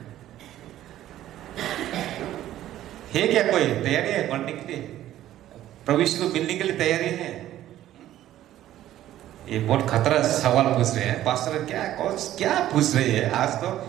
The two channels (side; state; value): left; quieter; 13.1 dB